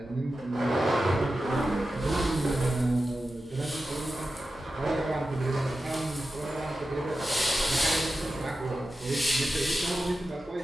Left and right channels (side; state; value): both; normal; correlation 0.92